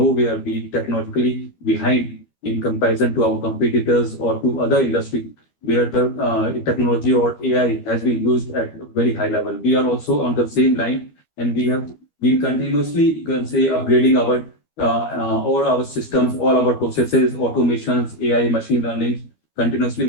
where we technologically behind in comparison to our competitors or to other industry where the technology or AI has been used at a very high level. We are also on the same line, and we have been continuously, you can say, upgrading our all our systems, all our processes, automations, AI, machine learning. Continuously,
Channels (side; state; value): right; late; 13 ms